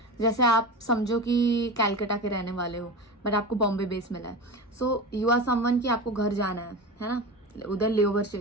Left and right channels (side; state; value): both; normal; correlation 0.27